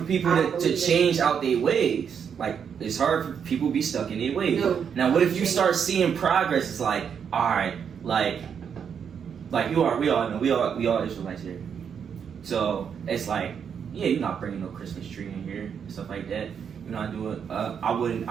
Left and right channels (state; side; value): quieter; left; 7.4 dB